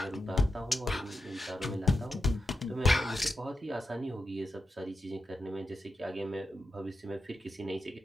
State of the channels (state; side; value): normal; both; correlation 0.88